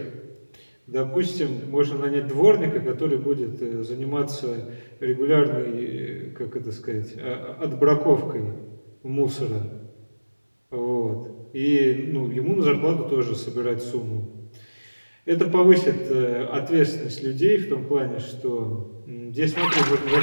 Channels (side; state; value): both; inverted; correlation -1.00